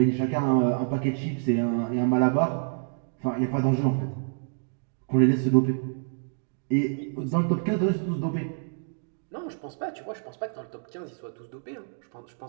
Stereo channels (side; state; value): left; silent; digital silence